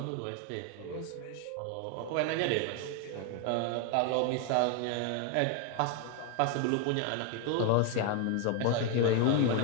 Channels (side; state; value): both; different; correlation 0.01